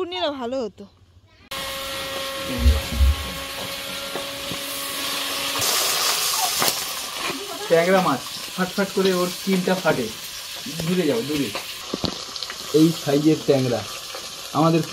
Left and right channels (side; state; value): both; identical; correlation 1.00